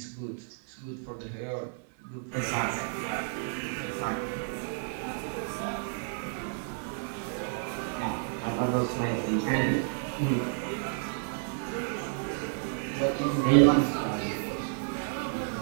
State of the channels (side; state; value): left; silent; 57 dB below the other